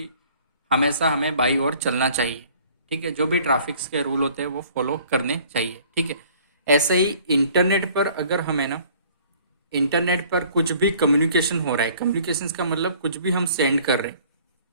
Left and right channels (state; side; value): inverted; both; correlation -0.54